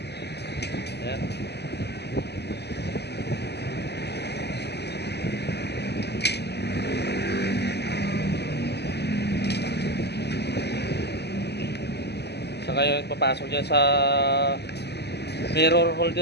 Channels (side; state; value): right; late; 0.49 ms